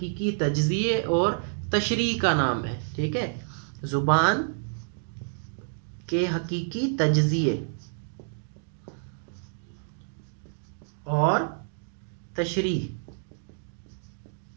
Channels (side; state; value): left; silent; digital silence